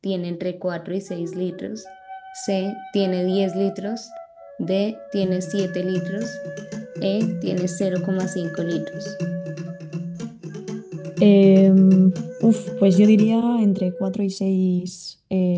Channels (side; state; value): both; identical; correlation 1.00